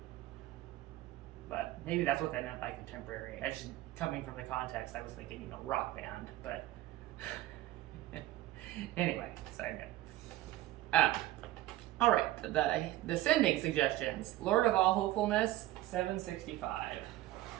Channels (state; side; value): quieter; left; 15.8 dB